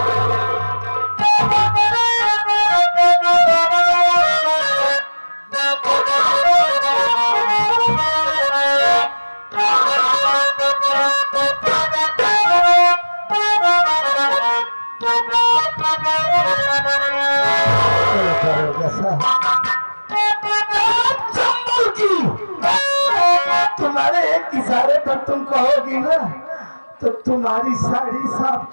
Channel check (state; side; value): inverted; both; correlation -1.00